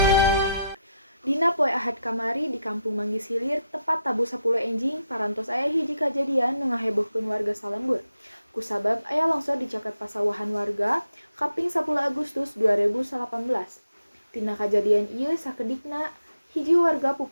Dina poe Ahad kamari di Kampung Manggis Hilir tepat tabu 10 enjing parantos aya hiji kajadian nu ngahebohkeun warga salembur. Kusabab aya longsor di caket pasawahan warga kaping 10 Agustus 2018. Tina kajadian ieu sakedikna hiji warga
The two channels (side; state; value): both; inverted; correlation -0.83